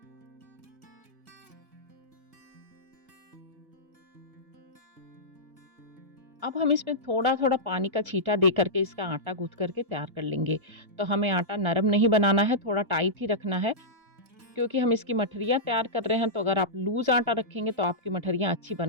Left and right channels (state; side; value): late; left; 1.7 ms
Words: अब हम इसमें थोड़ा-थोड़ा पानी का छींटा दे करके इसका आटा गूँथ करके तैयार कर लेंगे। तो हमें आटा नरम नहीं बनाना है, थोड़ा टाइट ही रखना है क्योंकि हम इसकी मठरियाँ तैयार कर रहे हैं। तो अगर आप लूज़ आटा रखेंगे तो आपकी मठरियाँ अच्छी